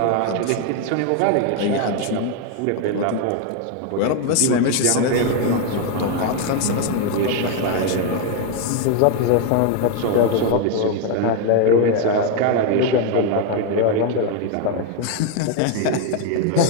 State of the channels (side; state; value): both; different; correlation 0.01